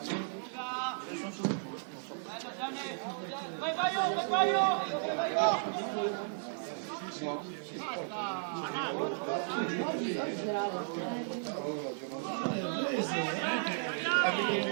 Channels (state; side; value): silent; left; digital silence